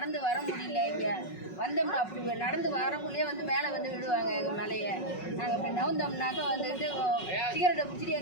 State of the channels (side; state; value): right; late; 5.4 ms